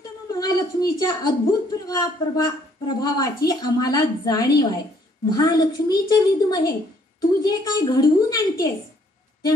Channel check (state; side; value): normal; both; correlation 0.65